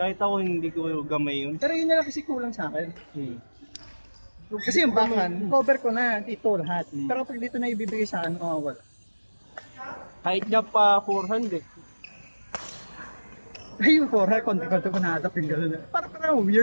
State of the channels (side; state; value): both; inverted; correlation -1.00